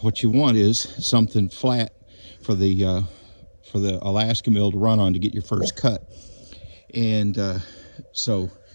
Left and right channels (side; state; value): both; inverted; correlation -1.00